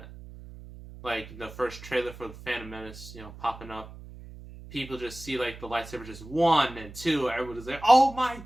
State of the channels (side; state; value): right; noise; hum, 15 dB below the sound